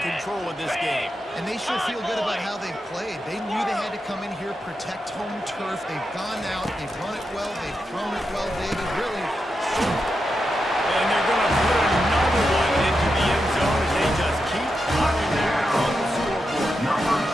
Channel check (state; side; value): normal; both; correlation 0.87